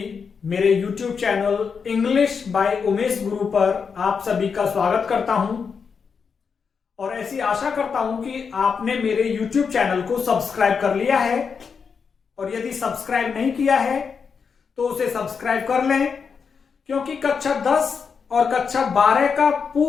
मेरे YouTube channel English by Umesh गुरु पर आप सभी का स्वागत करता हूं और ऐसी आशा करता हूं कि आपने मेरे YouTube चैनल को सब्सक्राइब कर लिया है और यदि सब्सक्राइब नहीं किया है तो उसे सब्सक्राइब कर लें, क्योंकि कक्षा 10 और कक्षा 12 का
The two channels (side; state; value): right; quieter; 5.9 dB